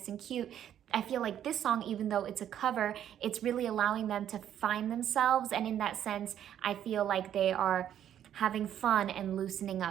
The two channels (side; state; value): left; quieter; 10.3 dB